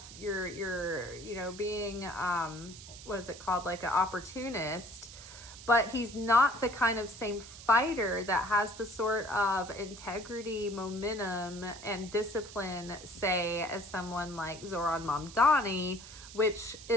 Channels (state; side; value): noise; right; hiss, 15 dB below the sound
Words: You're being, what is it called? Like an opportunist. But he's not the kind of same fighter that has the sort of integrity, momentum, and discipline, say, as someone like Zoran Mamdani, which